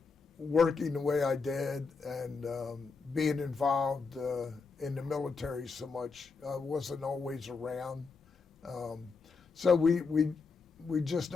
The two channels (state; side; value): quieter; right; 4.7 dB